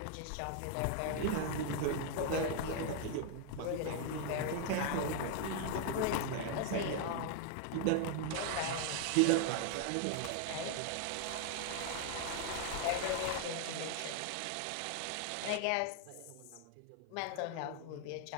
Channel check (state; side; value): different; both; correlation 0.00